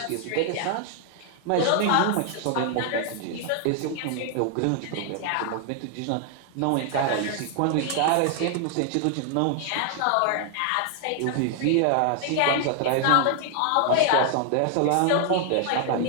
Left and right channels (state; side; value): different; both; correlation 0.00